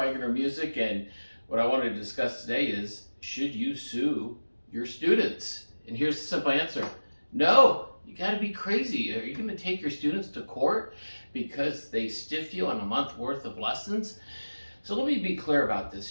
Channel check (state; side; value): inverted; both; correlation -1.00